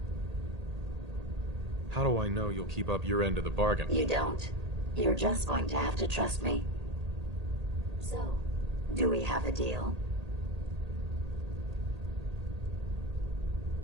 How do I know you'll keep up your end of the bargain? You don't. You're just going to have to trust me. So, do we have a deal?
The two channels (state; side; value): late; left; 1.8 ms